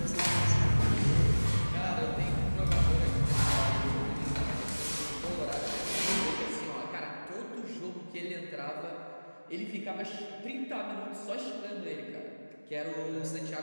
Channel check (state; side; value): inverted; both; correlation -1.00